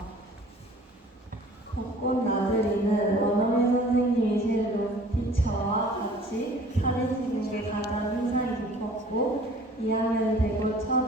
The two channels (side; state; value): both; normal; correlation 0.50